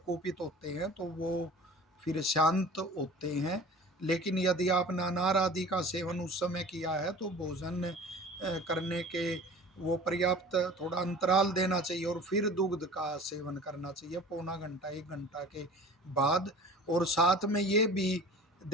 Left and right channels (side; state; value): both; normal; correlation 0.43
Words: होते हैं तो वो फिर शांत होते हैं। लेकिन यदि आपने अनार आदि का सेवन उस समय किया है तो भोजन करने के वो पर्याप्त थोड़ा अंतराल देना चाहिए और फिर दुग्ध का सेवन करना चाहिए पौना घंटा 1 घंटा के बाद। और साथ में ये भी